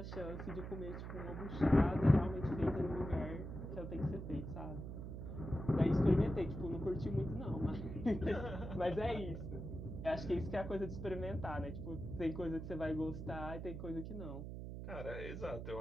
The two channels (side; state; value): right; noise; hum, 7 dB below the sound